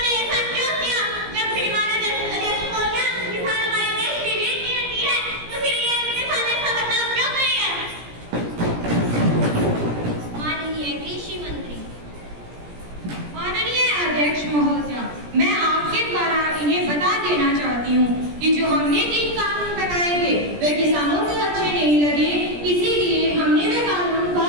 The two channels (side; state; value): left; late; 17 ms